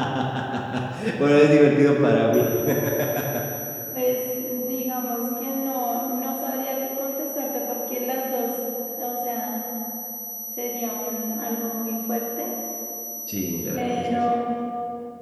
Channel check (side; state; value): both; identical; correlation 1.00